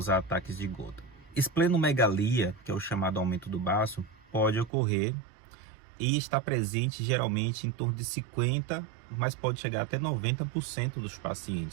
ataques de gota. Esplenomegalia, que é o chamado aumento do baço, pode ocorrer e está presente geralmente em torno de 50%, mas pode chegar até 90% dos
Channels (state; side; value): drops out; left; at 4.7 s